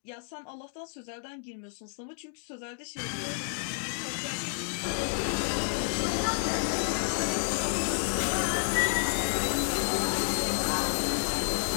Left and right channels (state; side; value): silent; right; digital silence